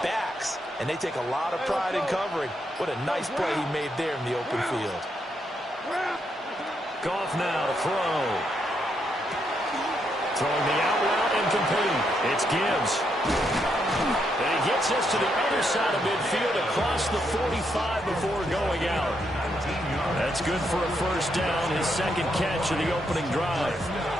backs, and they take a lot of pride in covering. What a nice play he made there in the open field. Goff now to throw. Throwing the out route and complete. It's Gibbs. And he gets us to the other side of midfield across the 45 before going out. That's good for a 1st down, his 2nd catch of the opening drive.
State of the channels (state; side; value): normal; both; correlation 0.78